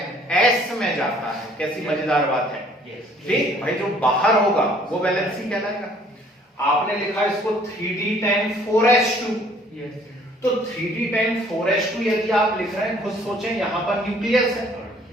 एस में जाता है। कैसी मजेदार बात है, ठीक भाई। जो बाहर होगा वो वैलेंसी कहलाएगा। आपने लिखा इसको 3d10 4s2, तो 3d10 4s2 यदि आप लिख रहे हैं, खुद सोचें, यहां पर न्यूक्लियस है,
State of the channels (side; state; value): both; normal; correlation 0.58